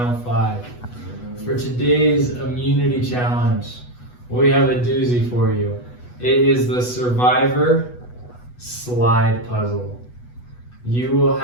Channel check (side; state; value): right; late; 8.2 ms